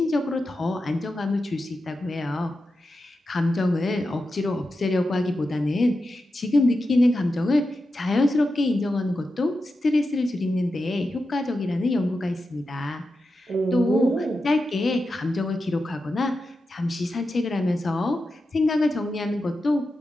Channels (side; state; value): both; normal; correlation 0.90